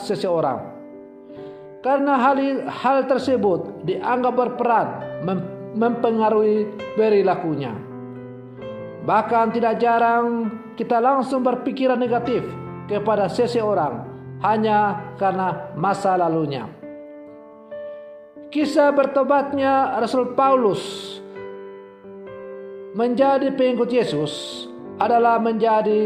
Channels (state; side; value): identical; both; correlation 1.00